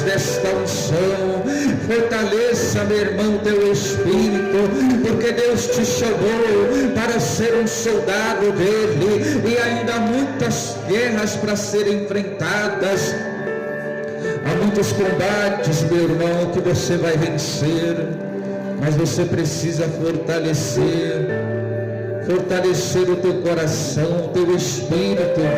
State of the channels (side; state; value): both; identical; correlation 1.00